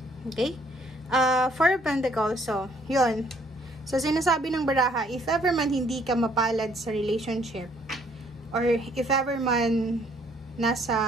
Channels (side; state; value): both; normal; correlation 0.64